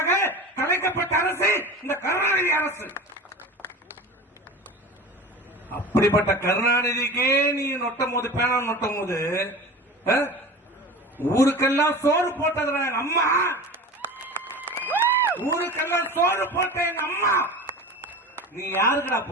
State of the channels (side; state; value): both; normal; correlation 0.34